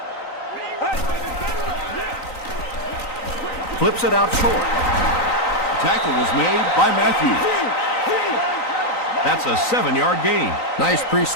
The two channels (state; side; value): late; right; 3.9 ms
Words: Flips it out short. Tackle was made by Matthews. That's a 7-yard gain. Nice